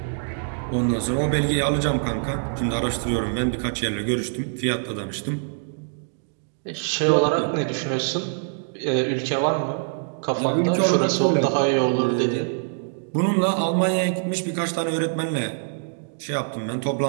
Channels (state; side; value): silent; left; digital silence